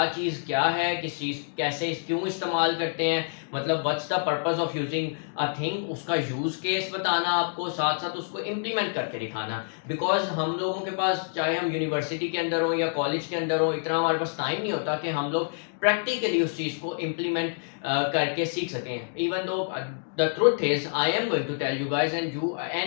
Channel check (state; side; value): silent; right; digital silence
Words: चीज़ क्या है, किस चीज़ कैसे क्यों इस्तेमाल करते हैं, मतलब what's the purpose of using a thing, उसका यूज केस बताना आपको, साथ साथ उसको इम्प्लीमेंट करके दिखाना। बिकॉज हम लोगों के पास, चाहे हम यूनिवर्सिटी के अंदर हो या कॉलेज के अंदर हो, इतना हमारे पास टाइम नहीं होता कि हम लोग प्रैक्टिकली उस चीज़ को इम्प्लीमेंट करके सीख सकें। Even though the truth is I am going to tell you guys and you